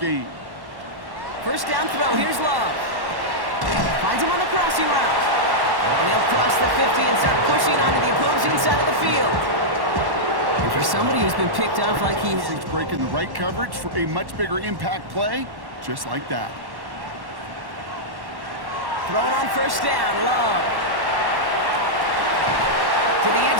1st down throw, here's Love. Finds him on the crossing route. And he'll cross the 50 and start pushing onto the opposing side of the field. And for somebody who's been picked off like he He's breaking the right coverage for a much bigger impact play, just like that. Throwing on 1st down, Love. To the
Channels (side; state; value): left; late; 1.1 ms